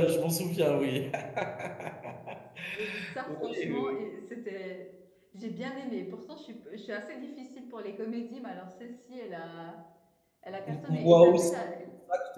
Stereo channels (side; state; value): both; identical; correlation 1.00